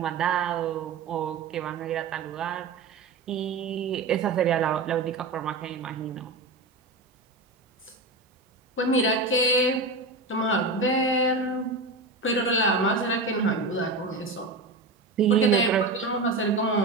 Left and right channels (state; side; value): quieter; left; 3.4 dB